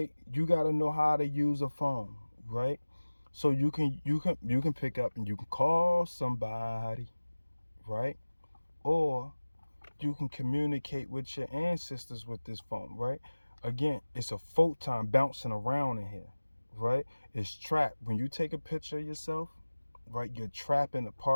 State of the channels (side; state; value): both; inverted; correlation -1.00